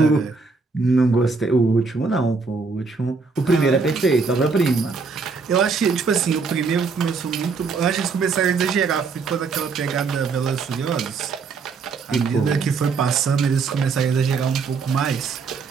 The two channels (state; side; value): quieter; left; 4.6 dB